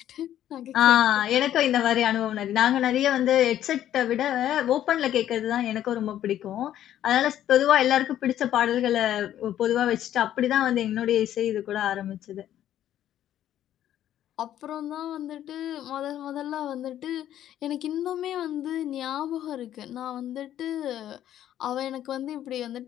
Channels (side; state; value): right; quieter; 11.6 dB